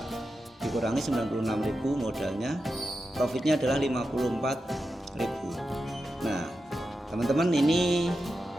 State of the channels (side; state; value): both; normal; correlation 0.90